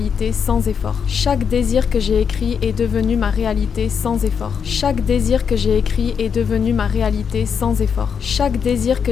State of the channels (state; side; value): quieter; right; 6.8 dB